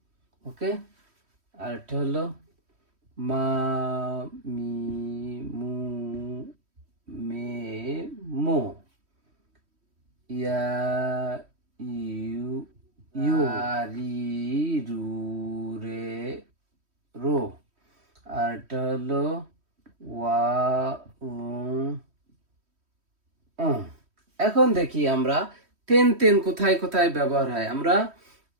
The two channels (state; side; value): late; left; 3.1 ms